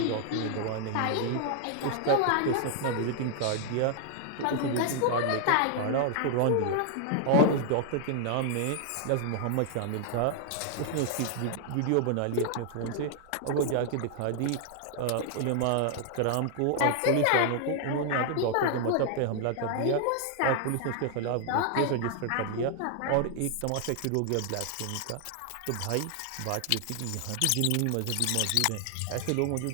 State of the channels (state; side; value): different; both; correlation 0.00